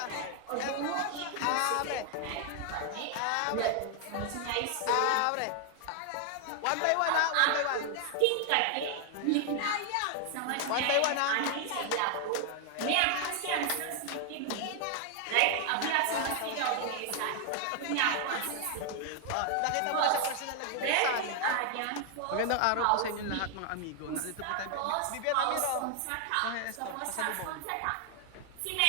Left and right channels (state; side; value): different; both; correlation 0.00